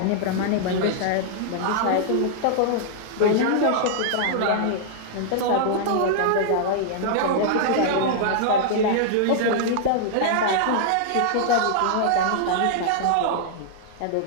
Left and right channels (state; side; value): different; both; correlation -0.01